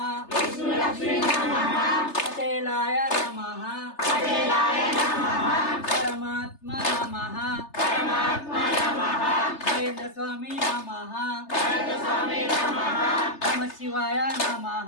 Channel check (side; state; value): right; late; 3.3 ms